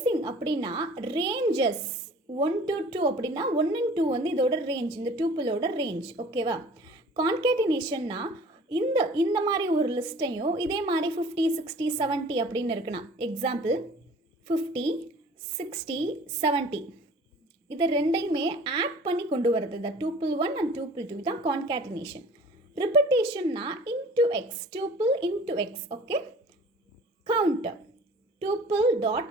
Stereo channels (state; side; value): normal; both; correlation 0.47